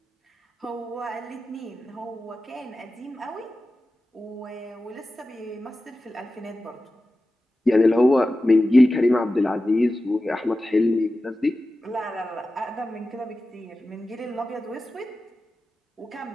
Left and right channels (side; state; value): both; normal; correlation 0.94